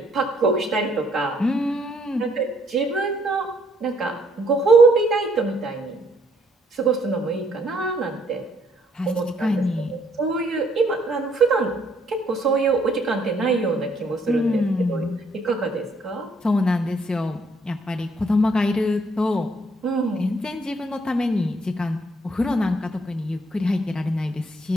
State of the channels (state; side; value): normal; both; correlation 0.68